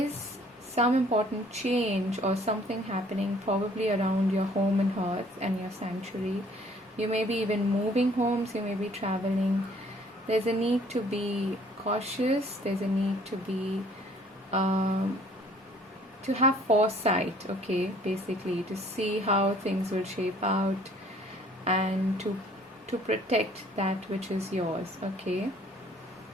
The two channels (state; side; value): normal; both; correlation 0.57